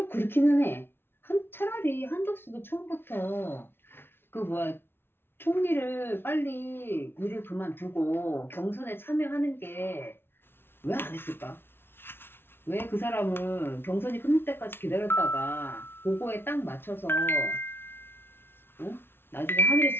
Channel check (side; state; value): right; late; 0.11 ms